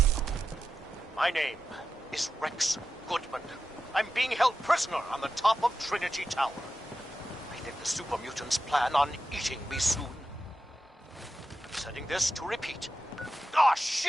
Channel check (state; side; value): normal; both; correlation 0.90